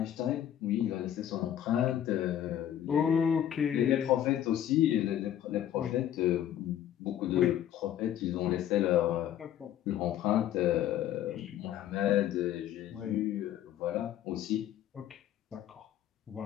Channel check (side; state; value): right; quieter; 11.0 dB